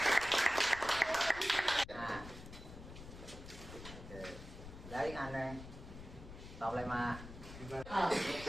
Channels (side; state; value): left; noise; rumble, 13 dB below the sound